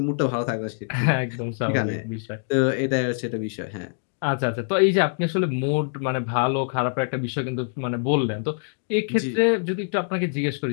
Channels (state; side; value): silent; right; 59 dB below the other